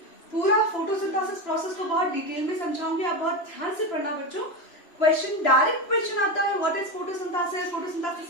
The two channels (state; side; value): late; right; 2.9 ms